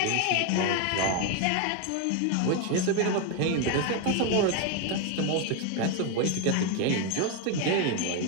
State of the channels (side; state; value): both; different; correlation 0.01